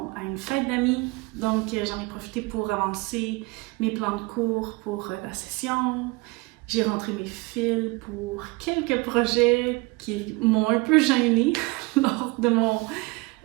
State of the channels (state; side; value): quieter; left; 25.1 dB